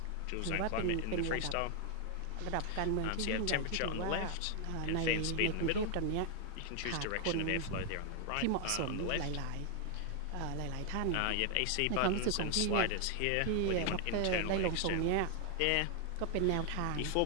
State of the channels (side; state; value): both; different; correlation 0.00